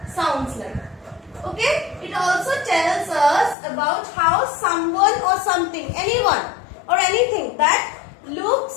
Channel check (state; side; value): drops out; right; at 3.6 s